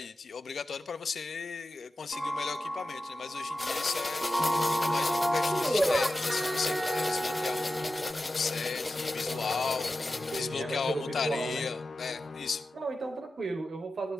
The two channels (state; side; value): normal; both; correlation 0.93